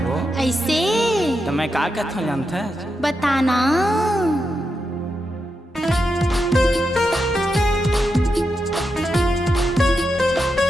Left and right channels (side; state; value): both; normal; correlation 0.86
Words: वो। ऐसे तो मैं का कहता हूँ जानता है? बताना।